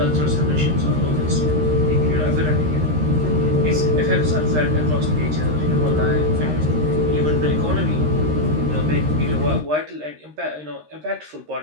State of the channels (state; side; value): late; left; 13 ms